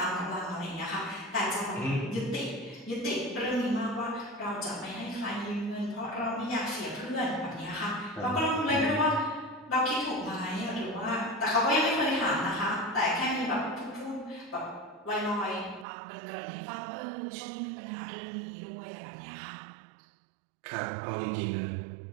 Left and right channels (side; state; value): left; drops out; at 15.9 s